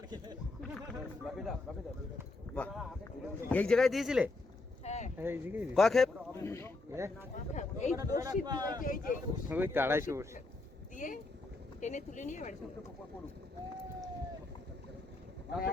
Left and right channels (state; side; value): quieter; right; 3.2 dB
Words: বাহ এই জায়গায় দিয়েছিলে হ্যাঁ এই দিকে কয় খেপ এই বড়শি দিয়ে এই যে ওই তাড়াইছে বসে। দিয়ে টেনে তুলে নিয়ে বাড়ি চলে কখন